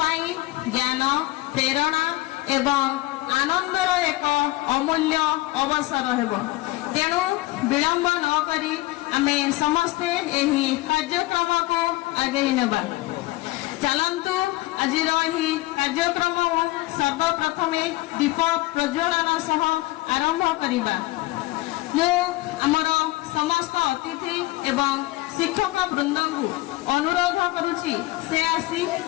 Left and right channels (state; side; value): quieter; right; 19.5 dB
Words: ज्ञान प्रेरणा एवं आनंदर एक अमूल्य अवसर हेबो। तेणु विलंब न करी आमे समस्ते एही कार्यक्रम को आगे नेबा। चलंतु आजिर एही कार्यक्रम सर्वप्रथमे दीप प्रज्वलन सह आरंभ करिबा। मु आमर समस्त अतिथि एवं शिक्षक वृंद को अनुरोध करुछि से आसी